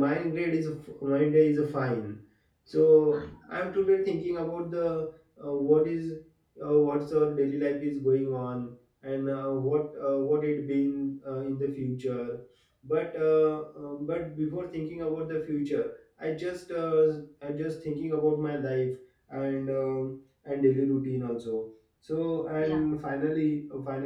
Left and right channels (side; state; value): both; identical; correlation 1.00